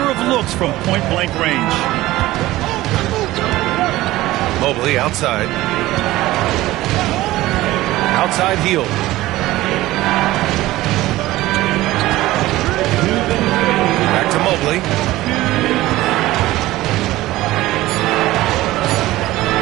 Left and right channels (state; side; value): quieter; left; 17.0 dB